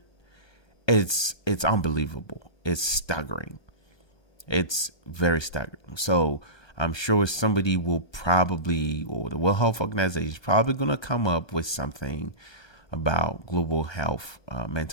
it's unbelievable. It's staggering. It's very staggering. So I'm sure somebody will probably, or the World Health Organization is probably going to come up with something about global health,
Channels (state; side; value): late; right; 1.2 ms